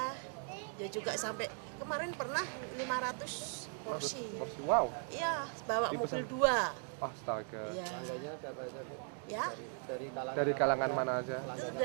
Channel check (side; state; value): left; silent; 52 dB below the other